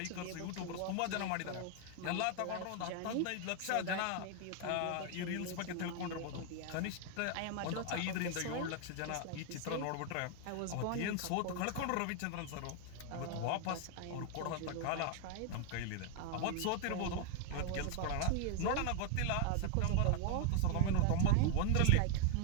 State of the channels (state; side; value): different; both; correlation 0.00